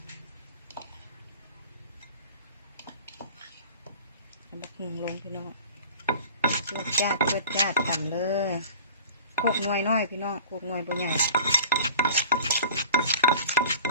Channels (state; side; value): inverted; both; correlation -0.44